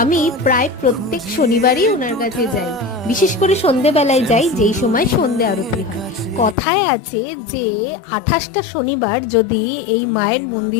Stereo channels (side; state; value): right; drops out; at 6.6 s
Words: আমি প্রায় প্রত্যেক শনিবারই ওনার কাছে যাই, বিশেষ করে সন্ধেবেলায় যাই, যেই সময় সন্ধে আরতি হয়। কথায় আছে যে 28টা শনিবার যদি এই মায়ের